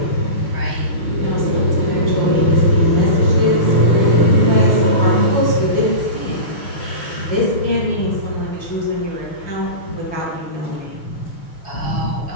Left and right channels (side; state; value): right; late; 6.3 ms